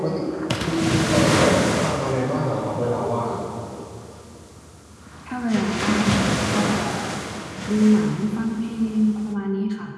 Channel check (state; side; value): identical; both; correlation 1.00